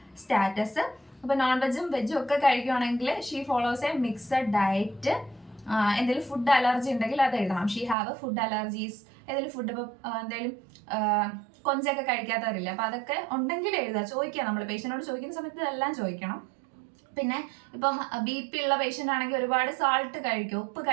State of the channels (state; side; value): drops out; left; at 8.0 s